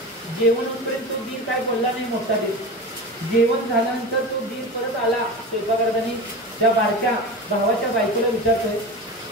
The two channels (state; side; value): normal; both; correlation 0.28